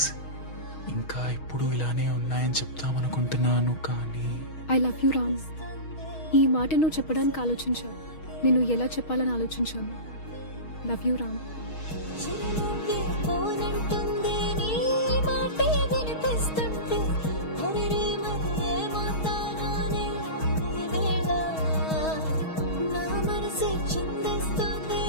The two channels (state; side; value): late; right; 6.3 ms